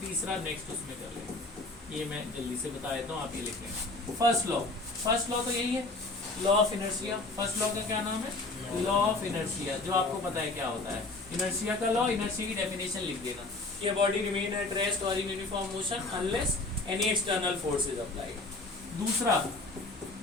तीसरा नेक्स्ट उसमें कर लेते हैं। ये मैं जल्दी से बता देता हूँ, आप ये लिख लें। फर्स्ट लॉ, फर्स्ट लॉ तो यही है, law of inertia. First law का क्या नाम है? लॉ ऑफ इनर्शिया, जो आपको पता है क्या होता है। इनर्शिया का लॉ, इनर्शिया की डेफिनेशन लिख देना कि बॉडी रिमेन एट रेस्ट और in uniform motion unless any external force is applied. दूसरा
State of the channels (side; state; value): right; quieter; 3.2 dB